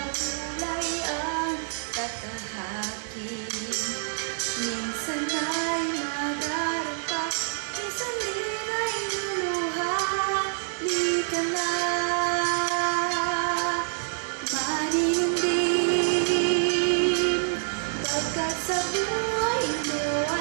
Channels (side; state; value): left; silent; digital silence